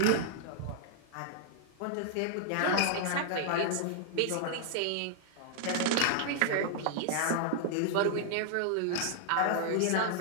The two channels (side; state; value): both; different; correlation -0.01